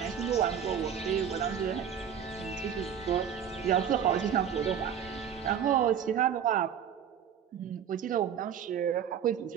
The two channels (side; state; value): left; quieter; 8.4 dB